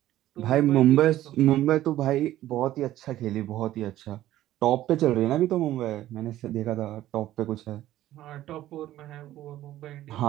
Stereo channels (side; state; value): left; quieter; 13.9 dB